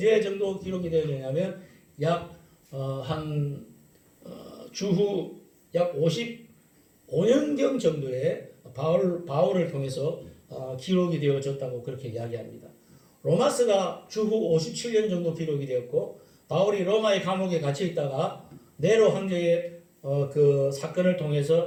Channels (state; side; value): identical; both; correlation 1.00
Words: 정도 기록이 되었냐면 주후 약 55년경 정도에 바울을 통해서 기록이 되어졌다고 그렇게 이야기합니다. 로마서가 주후 57년 정도 기록이 되었고, 바울이 로마의 감옥에 갇혀 있다가 네로 황제의 그 사건을